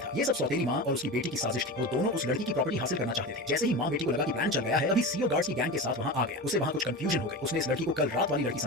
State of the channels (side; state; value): both; normal; correlation 0.26